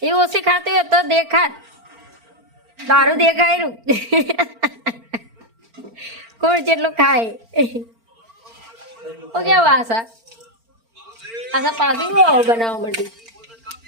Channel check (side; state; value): left; late; 4.4 ms